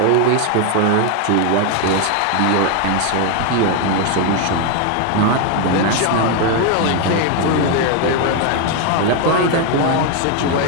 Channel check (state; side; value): different; both; correlation 0.01